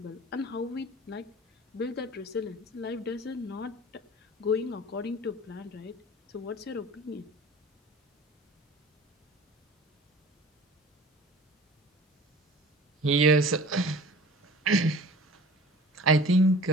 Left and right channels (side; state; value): both; normal; correlation 0.43